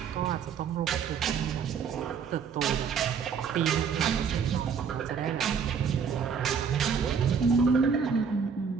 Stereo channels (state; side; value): quieter; left; 6.5 dB